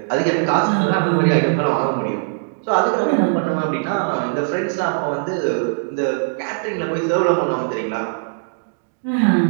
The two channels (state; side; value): silent; left; digital silence